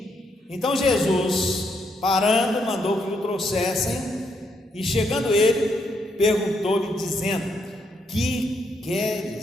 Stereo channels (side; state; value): both; normal; correlation 0.77